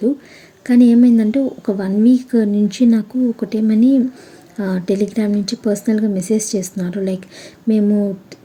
కానీ ఏమైందంటే ఒక 1 వీక్ నుంచి నాకు ఒకటేమని టెలిగ్రామ్ నుంచి పర్సనల్‌గా మెసేజ్ చేస్తున్నారు. లైక్ మేము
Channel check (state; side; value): identical; both; correlation 1.00